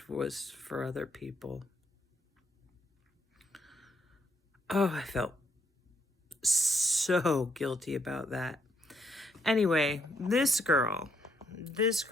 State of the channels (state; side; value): normal; both; correlation 0.74